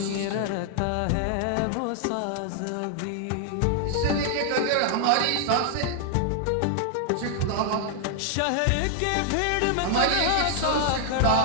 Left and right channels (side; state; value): both; different; correlation 0.00